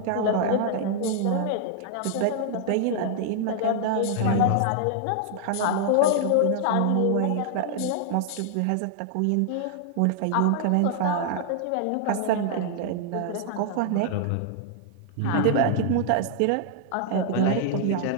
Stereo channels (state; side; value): different; both; correlation 0.00